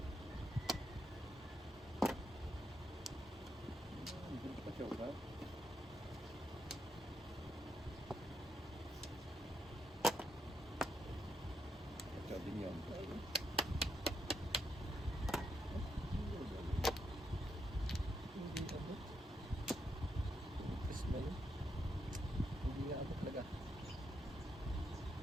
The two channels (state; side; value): normal; both; correlation 0.79